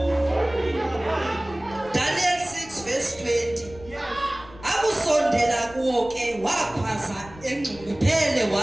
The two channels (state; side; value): noise; left; rumble, 20 dB below the sound